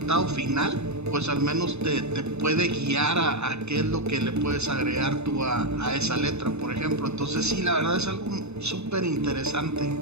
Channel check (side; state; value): left; late; 0.81 ms